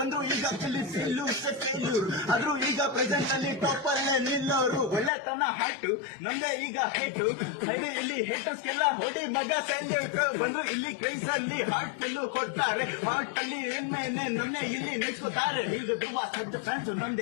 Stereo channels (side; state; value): right; drops out; at 5.1 s